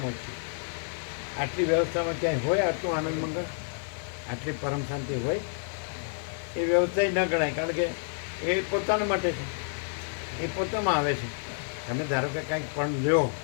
ઓછી આટલી વ્યવસ્થામાં ક્યાંય હોય આટલું આનંદ મંગળ, આટલી પરમ શાંતિ હોય એ વ્યવસ્થા ન ગણાય. કારણ કે એ પોતાના માટે છે. એ પોતામાં આવે છે. તમે ધારો કે કાંઈક પણ લ્યો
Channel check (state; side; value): silent; right; digital silence